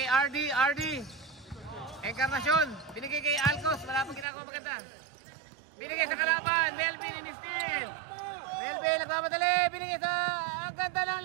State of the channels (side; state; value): left; drops out; at 4.2 s